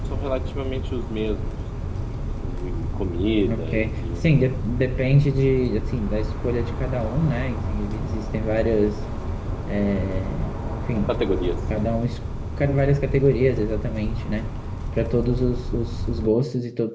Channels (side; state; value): both; identical; correlation 1.00